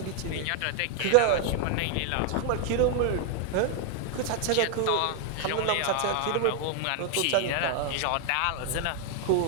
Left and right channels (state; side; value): different; both; correlation 0.00